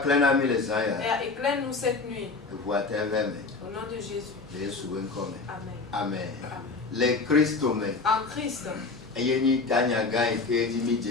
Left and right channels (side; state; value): right; quieter; 4.0 dB